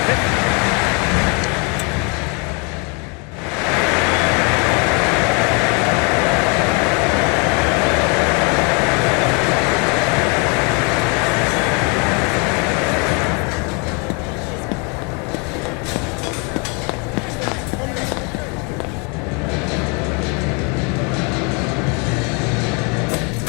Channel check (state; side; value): quieter; right; 33.1 dB